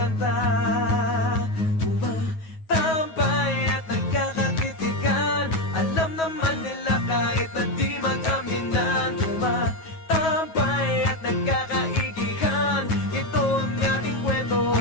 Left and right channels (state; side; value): late; right; 9.3 ms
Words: Kahit na di mag-aminan, tumatambay at nagkakaigihan. Ito ang ating kwento,